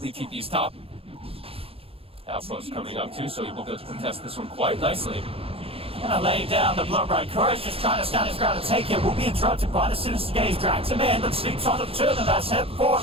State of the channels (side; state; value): left; late; 0.27 ms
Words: TP's top. Outpost coming up too, so he will be able to contest this one quite nicely. Gonna lay down the blood right. Courage just trying to stand his ground and take it. Will be interrupted by the sinister gaze. Drags him in, but sleeps on the two of them. That's head forward